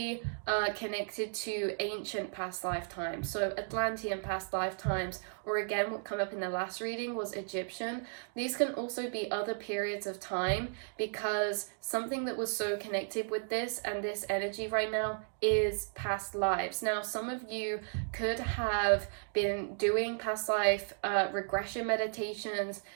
connected to ancient past lifetimes. So Atlantean past lifetimes, or again, what came up in the last reading was Egyptian. These can also be other periods of time, because something that was so connected with this and this energy right now is past lives. Now, some of you could have been doing past life regression meditations.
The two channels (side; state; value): left; silent; 55 dB below the other